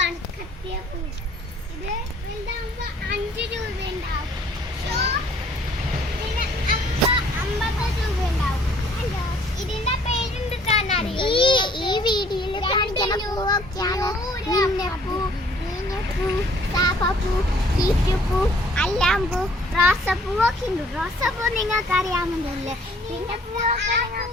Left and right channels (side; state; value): both; normal; correlation 0.58